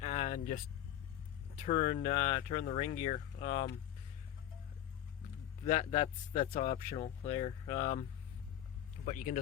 and just turn the ring gear. That's optional there. But you can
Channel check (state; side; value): quieter; right; 11.4 dB